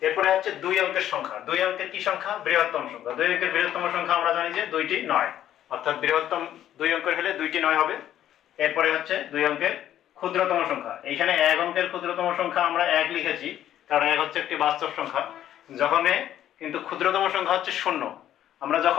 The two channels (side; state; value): right; quieter; 11.5 dB